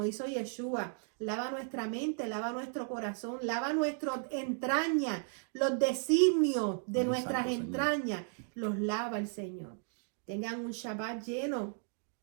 hizo Yeshua. Lava nuestra mente, lava nuestro corazón, lava nuestras entrañas, los designios de nuestras entrañas, los lava el Señor. Tengan un Shabbat lleno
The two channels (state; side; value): silent; left; 55 dB below the other